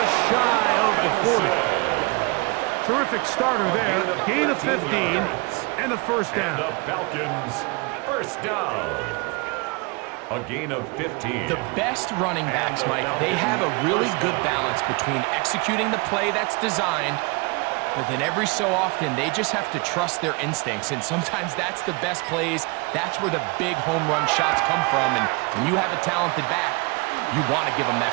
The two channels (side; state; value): left; quieter; 28.6 dB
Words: shy of the 40. Terrific starter there. Gain of 15 and a 1st down. And the Falcons, 1st down. A gain of 15. The best running backs, Mike, they have a really good balance between executing the play that's designed, but then every so often, they just have to trust their instincts, and sometimes that's the best plays. That's where the big home run shots come from, and when you have a talented back, you want to give them